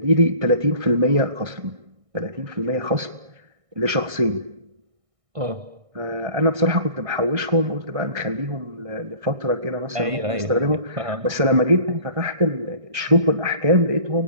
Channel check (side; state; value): left; late; 1.6 ms